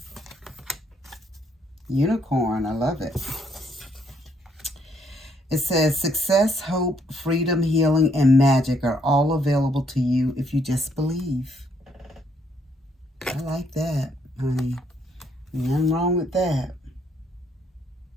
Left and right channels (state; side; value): normal; both; correlation 0.70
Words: Unicorn. I love it. It says, success, hope, freedom, healing, and magic are all available to you if you just believe. I like that, honey. Nothing wrong with that.